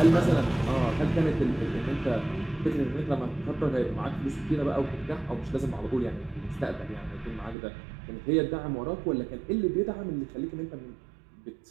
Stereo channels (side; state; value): left; drops out; at 7.6 s